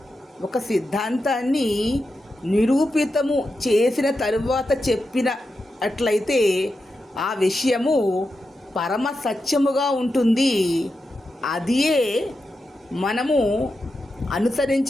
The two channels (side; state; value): both; normal; correlation 0.89